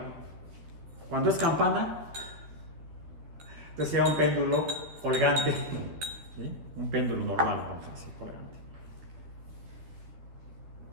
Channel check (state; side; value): late; left; 13 ms